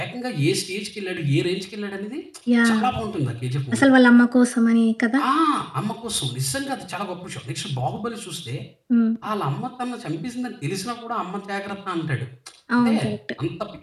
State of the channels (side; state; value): both; identical; correlation 1.00